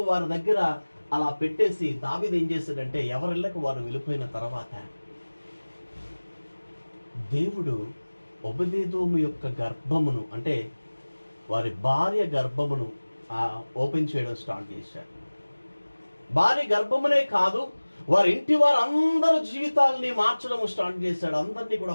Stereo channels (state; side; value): inverted; both; correlation -1.00